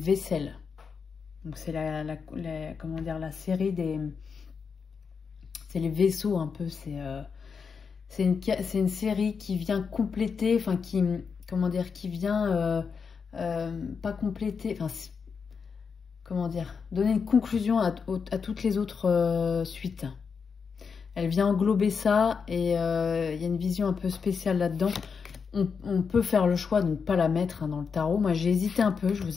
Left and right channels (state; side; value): quieter; right; 5.8 dB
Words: Donc c'est comment dire, la série des... C'est les vaisseaux un peu. C'est une série qui vient compléter, enfin qui... Comment dire, qui vient... pas compléter... Enfin, comment dire, donner une conclusion à toutes les autres suites. Elle vient englober ça et il y a une vision un peu spéciale là-dedans. On peut faire le choix de ne pas la mettre hein, dans le tarot. Moi, j'ai hésité un peu, je